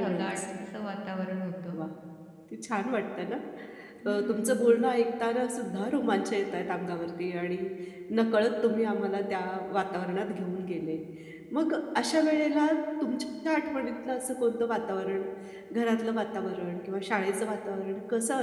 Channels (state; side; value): identical; both; correlation 1.00